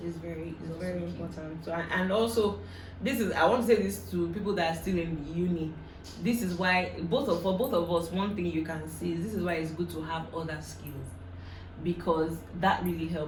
very important. So, and also, I want to say this to people that are still in uni. This is why for both of us, one thing you can see is this is why it's good to have other skills, because that really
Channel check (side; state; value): both; identical; correlation 1.00